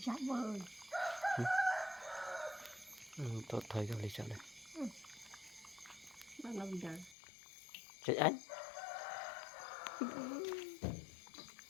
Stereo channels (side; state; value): right; drops out; at 7.2 s